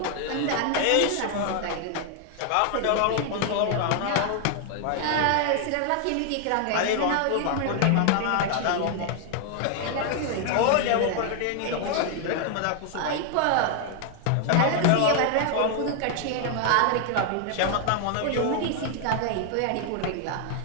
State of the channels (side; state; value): both; different; correlation 0.00